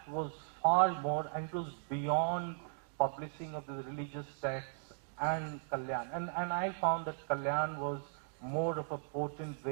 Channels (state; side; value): silent; left; digital silence